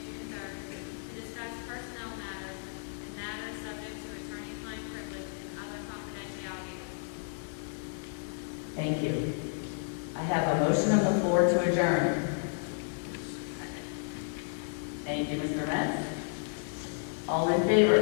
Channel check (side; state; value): right; silent; digital silence